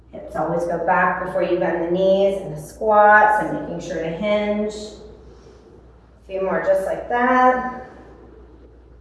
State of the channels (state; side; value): identical; both; correlation 1.00